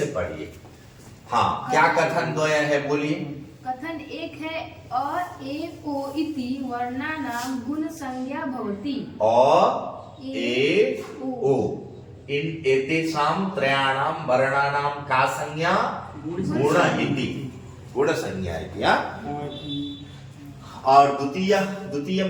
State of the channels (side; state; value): both; identical; correlation 1.00